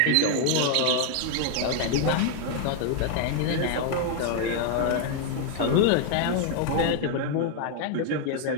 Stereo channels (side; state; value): both; different; correlation 0.00